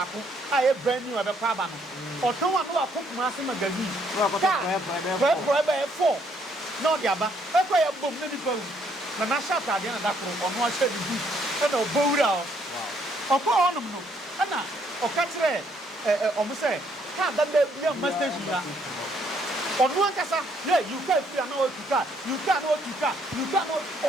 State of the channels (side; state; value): both; normal; correlation 0.69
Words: a e brand new obekọ aba no oton wa no akọ Kumasi magazine for e 4 no dia ba e ko ya bom na nipa na na sha ta dia na dakoro ono a sha di e na obowura o okọ onum no na oka kire omo say car da be bia station ya onu ankasa you can feel na you can